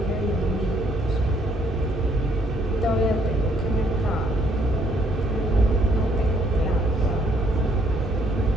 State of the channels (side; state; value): both; normal; correlation 0.68